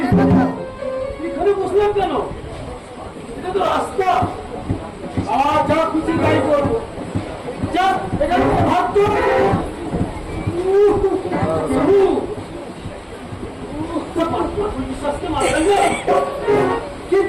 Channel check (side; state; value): both; identical; correlation 1.00